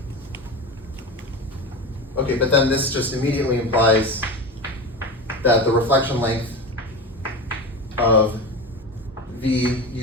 Okay, but then this just immediately implies that the reflection length of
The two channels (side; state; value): both; normal; correlation 0.25